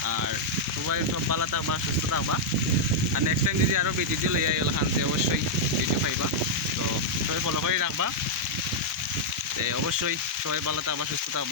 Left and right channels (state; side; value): normal; both; correlation -0.05